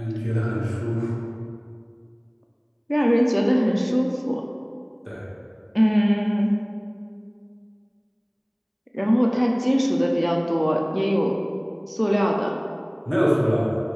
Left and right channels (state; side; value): identical; both; correlation 1.00